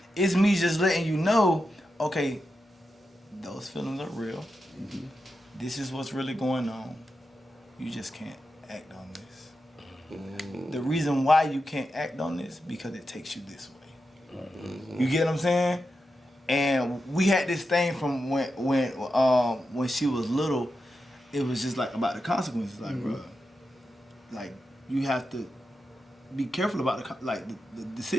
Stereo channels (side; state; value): both; normal; correlation 0.89